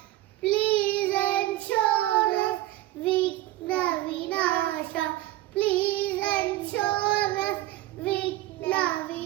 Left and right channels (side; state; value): left; quieter; 16.1 dB